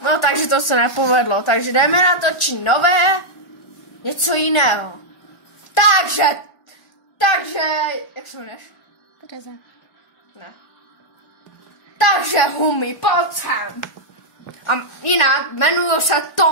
No, takže to se nepovedlo. Takže jdeme natočit nové, něco jiného. Takže, jak se jmenuješ? Tereza. Ne. Takže Humi, pojď sem. A jinak jmenuji se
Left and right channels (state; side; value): late; right; 1.4 ms